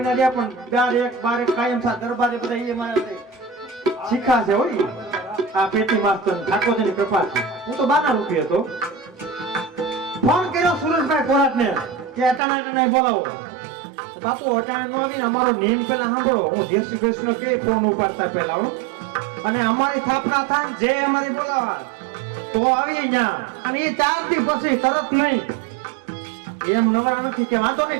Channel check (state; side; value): drops out; left; at 12.4 s